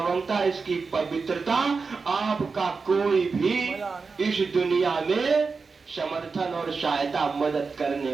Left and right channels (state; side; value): quieter; left; 4.7 dB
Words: इसकी पवित्रता आपका कोई भी इस दुनिया में समर्थन और सहायता, मदद करने